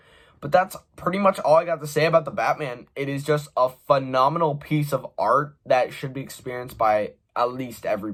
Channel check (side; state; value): both; identical; correlation 1.00